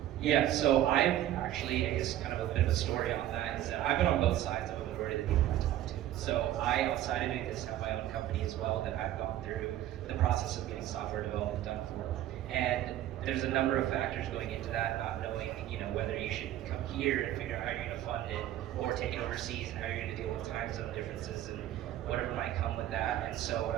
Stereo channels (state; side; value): quieter; left; 12.9 dB